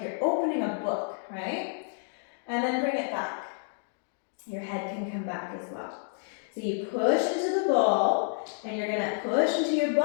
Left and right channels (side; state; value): right; silent; 58 dB below the other